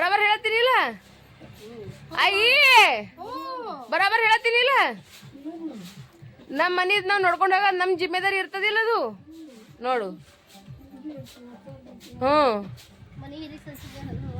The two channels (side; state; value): both; identical; correlation 1.00